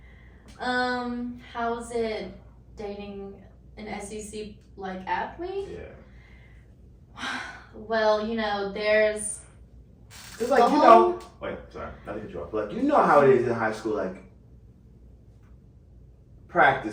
How's it dating an SEC like athlete? Yeah. Well, you know, there's. It's like, you know. Wait, sorry, not to cut you off. But like, you know how it is in high school, like,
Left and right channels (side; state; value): both; identical; correlation 1.00